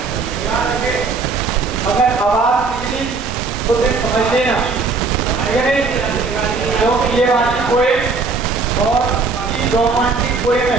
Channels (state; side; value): quieter; left; 4.2 dB